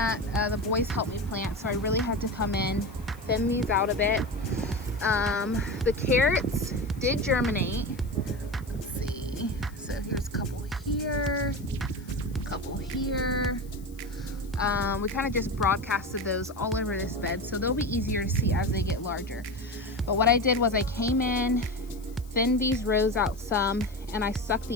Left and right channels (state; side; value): noise; left; hiss, 25 dB below the sound